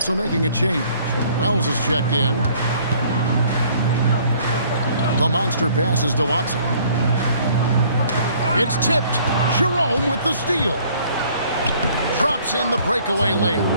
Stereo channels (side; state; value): both; inverted; correlation -0.58